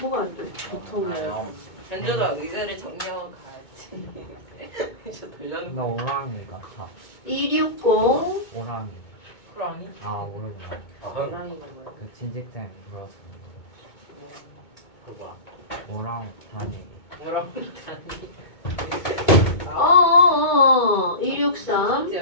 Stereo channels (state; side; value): late; right; 2.2 ms